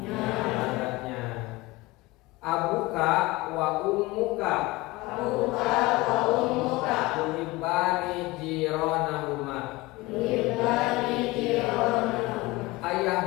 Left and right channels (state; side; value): quieter; right; 21.0 dB